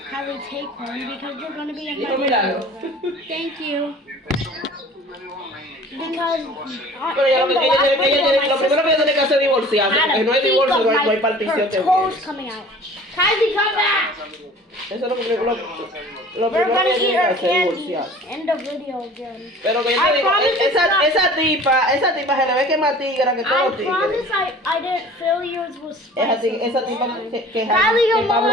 Kylie, take one because you're gonna be in my video. Thank you. Because Lo primero que tiene que hacer es divorciarse. Porque no hay divorcio, no hay partición. Toes coming out. Kylie, come back. Eso es lo primero We're que gonna eat tiene que our hacer, candy. divorciarse. End the video again. Pero que yo te digo, esa tipa se le ve que es más tigra que todos los tigres. I promise I didn't feel yours was spicy. Esa tipa que Kylie, come Pablo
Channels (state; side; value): normal; both; correlation 0.46